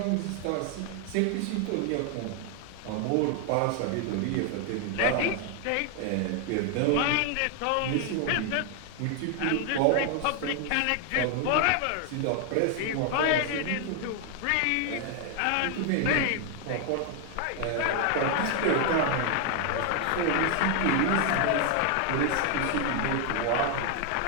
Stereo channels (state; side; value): different; both; correlation 0.00